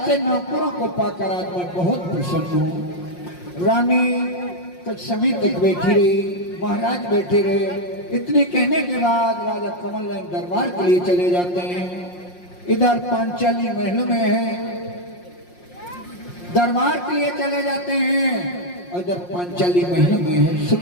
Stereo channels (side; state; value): right; late; 5.6 ms